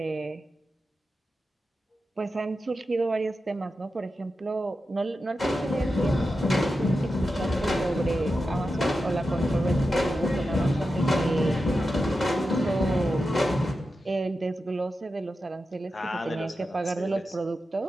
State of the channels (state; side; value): normal; both; correlation 0.90